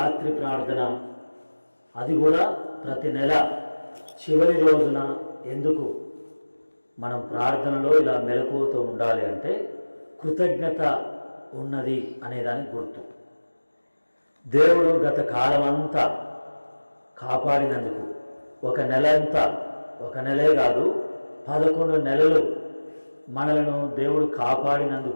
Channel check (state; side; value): inverted; both; correlation -1.00